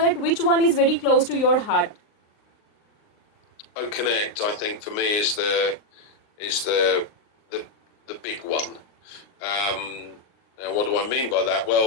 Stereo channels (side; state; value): right; late; 39 ms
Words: which one is very close to your heart. Connect, I think, for me is the big one. Now, what do I mean by that?